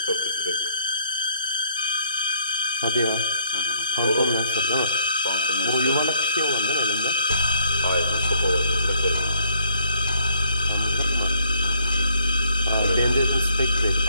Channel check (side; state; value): both; inverted; correlation -0.68